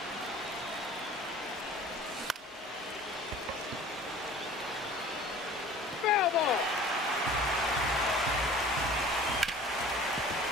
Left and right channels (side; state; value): both; normal; correlation 0.45